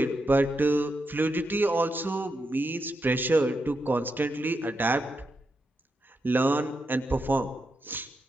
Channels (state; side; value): normal; both; correlation 0.84